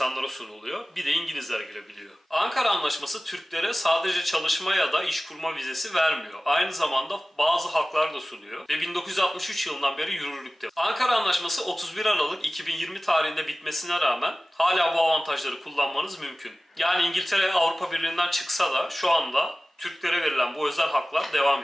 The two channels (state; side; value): normal; both; correlation 0.97